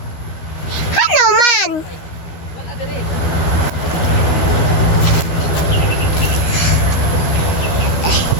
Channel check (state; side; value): late; right; 12 ms